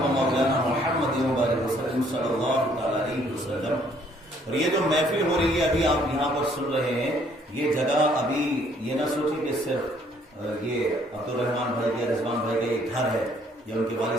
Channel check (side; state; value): both; normal; correlation 0.63